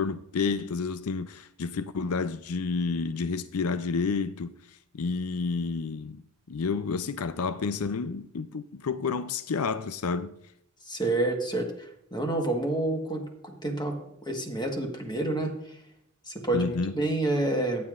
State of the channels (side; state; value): both; normal; correlation 0.36